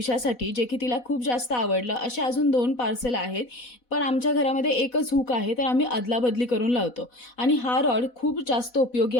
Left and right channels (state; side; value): late; right; 4.1 ms